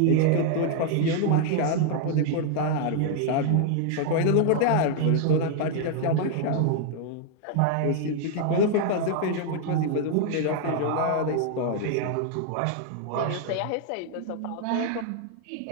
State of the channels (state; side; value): different; both; correlation 0.00